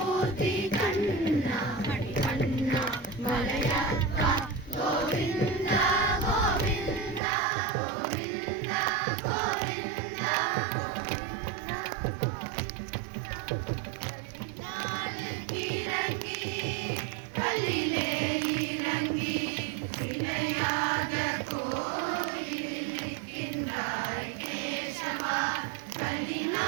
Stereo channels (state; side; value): drops out; left; at 7.2 s